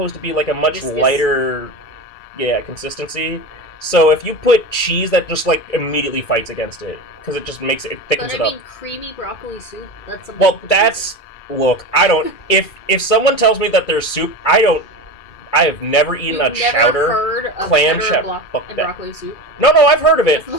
to be like a much lighter consistency. So if you put cheese, that just like immediately fights against it. Because it just makes it thickens it up. But I mean, creamy broccoli soup. That's something. Well, that's look. I don't. If someone tells me that there's soup, I have never eaten a chowder heard of clam chowder and broccoli soup. No, I've heard of it.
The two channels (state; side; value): late; right; 2.3 ms